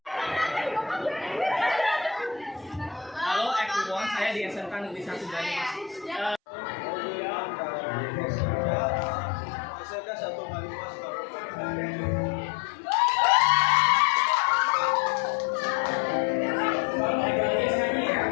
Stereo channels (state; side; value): drops out; right; at 6.4 s